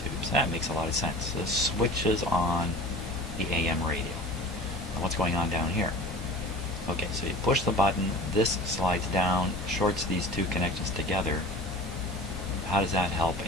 That makes a lot of sense. This switches on the AM radio. Now what's going on down here? Okay, so you push the button, this slides down, shorts these two connections together. How does that help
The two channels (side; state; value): both; normal; correlation 0.39